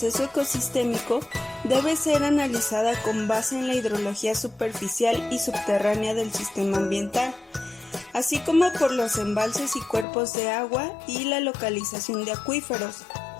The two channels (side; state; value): right; drops out; at 10.1 s